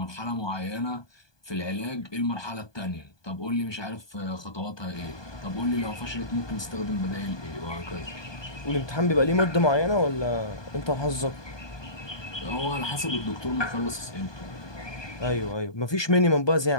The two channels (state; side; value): late; right; 1.2 ms